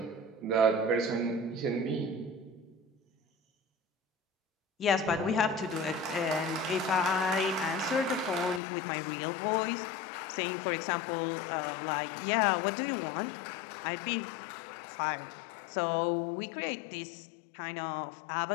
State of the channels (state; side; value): drops out; right; at 8.6 s